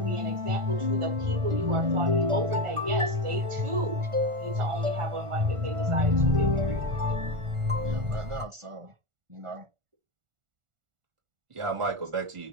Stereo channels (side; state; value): left; late; 1.4 ms